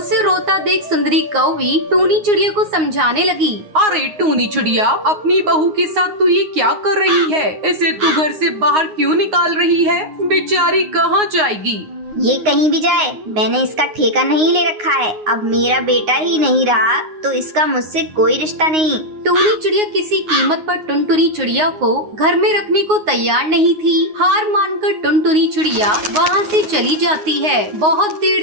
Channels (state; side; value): late; left; 9.6 ms